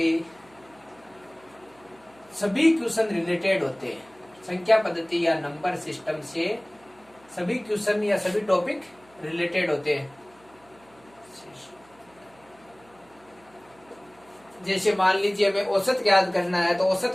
सभी क्वेश्चन रिलेटेड होते हैं। संख्या पद्धति या नंबर सिस्टम से सभी क्वेश्चन या सभी टॉपिक रिलेटेड होते हैं। जैसे मान लीजिए हमें औसत ज्ञात करना है, तो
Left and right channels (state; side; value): noise; right; hum, 29 dB below the sound